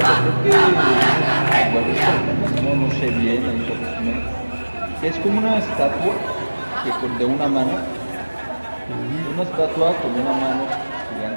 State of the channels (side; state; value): both; inverted; correlation -1.00